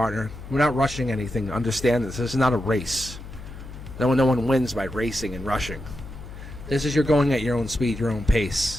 We're not rushing anything. Understand this. This is not a race. No one wins by racing and rushing. This is you're going at your own speed, your own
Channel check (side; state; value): left; noise; hum, 13 dB below the sound